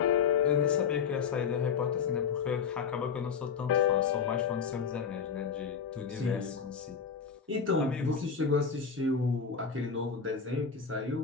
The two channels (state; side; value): quieter; right; 6.3 dB